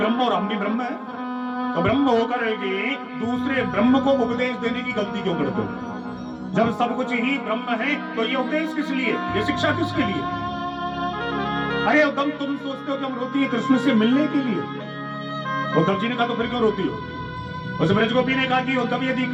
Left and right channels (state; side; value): identical; both; correlation 1.00